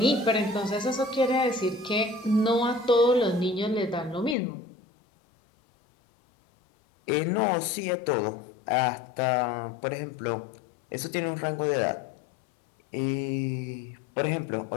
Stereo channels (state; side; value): drops out; right; at 4.4 s